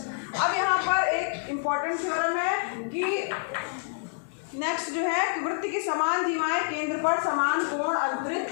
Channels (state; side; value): silent; right; digital silence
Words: अब यहाँ पर एक इम्पोर्टेंट थ्योरम है कि नेक्स्ट जो है कि वृत्त की समान जीवाएं केंद्र पर समान कोण अंतरित